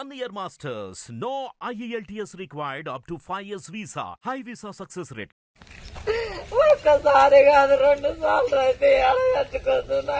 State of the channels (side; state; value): both; identical; correlation 1.00